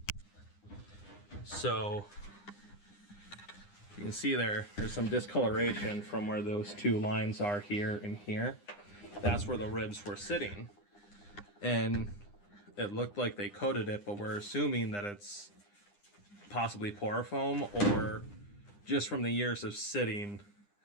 So you can see there's some discoloration from where those 2 lines are here and here. That's where the ribs were sitting. And it looked like they coated it, but we're assuming that it's possibly porofoam or just from the years of sitting,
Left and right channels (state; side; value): late; right; 9.8 ms